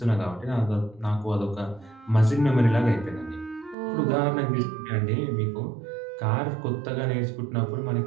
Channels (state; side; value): drops out; left; at 3.8 s